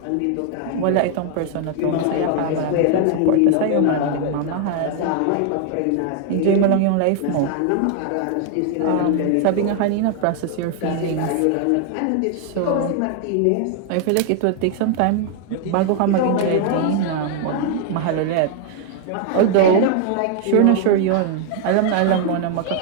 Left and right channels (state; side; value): different; both; correlation 0.00